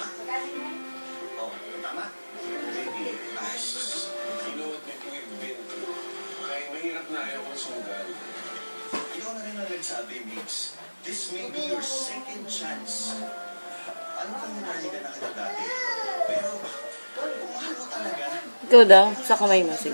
Sabi, Mix, this may be your second chance. Ano kang nanaligan na kita dati? Pero, kung mahal mo talaga... Ikaw daw, sa kamay mo,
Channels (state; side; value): inverted; both; correlation -1.00